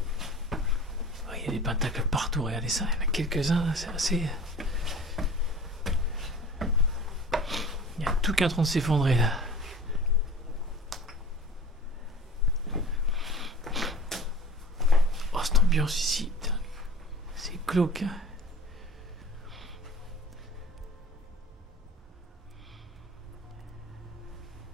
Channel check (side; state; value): both; normal; correlation 0.41